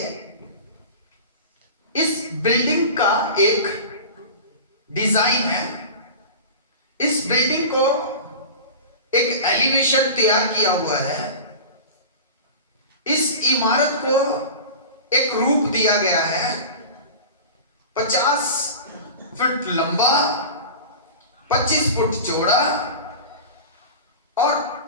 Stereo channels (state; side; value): inverted; both; correlation -0.33